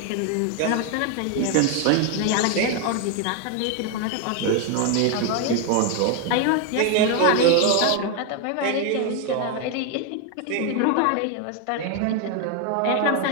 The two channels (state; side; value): different; both; correlation 0.01